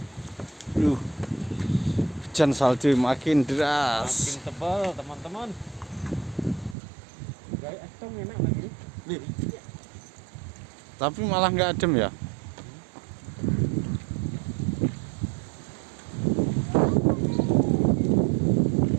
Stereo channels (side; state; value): left; drops out; at 6.8 s